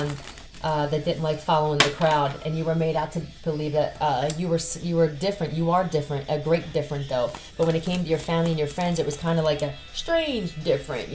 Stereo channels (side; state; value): both; identical; correlation 1.00